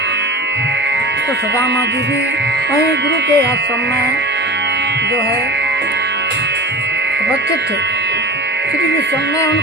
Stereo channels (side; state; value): both; normal; correlation 0.34